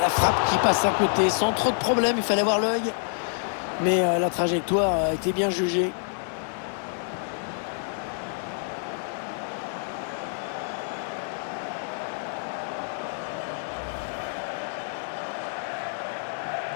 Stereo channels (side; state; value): right; silent; digital silence